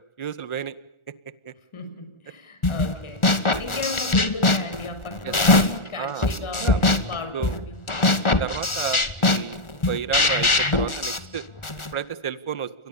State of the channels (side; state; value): right; late; 1.4 ms